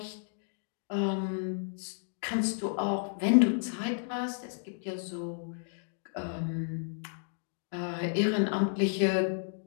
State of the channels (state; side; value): silent; right; digital silence